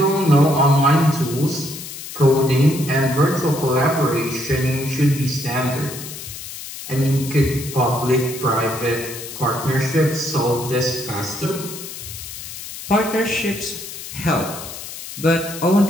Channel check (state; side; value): noise; left; hiss, 11 dB below the sound